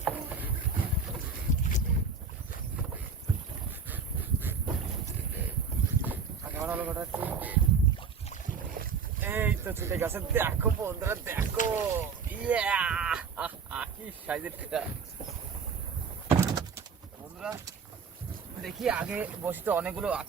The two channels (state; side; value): quieter; left; 5.6 dB